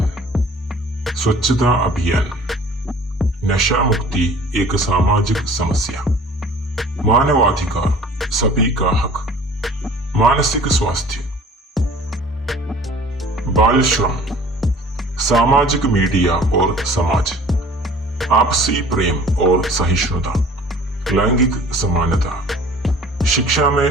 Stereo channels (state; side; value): normal; both; correlation 0.48